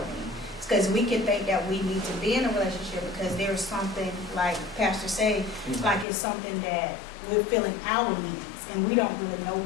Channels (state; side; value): drops out; right; at 6.1 s